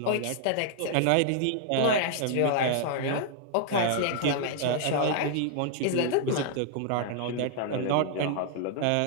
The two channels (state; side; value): different; both; correlation -0.01